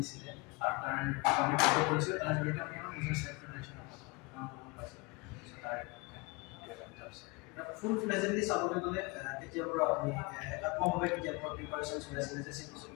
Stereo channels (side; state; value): right; quieter; 27.2 dB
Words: আৰু তাৰ আমি ফটো কৰিছোঁ তাৰ জৰিয়তে আমি আমাৰ নিজৰ সেল্ফ প্ৰিপাৰেশ্যন পাইছোঁ তাৰ ফুল ফ্লেজেন্টলি চাবলৈ গ'লে কেতিয়াৰ পৰা আপুনি একাত্মকভাৱে কেতিয়াৰ পৰা প্ৰিপাৰেশ্যন চলাইছিলে যে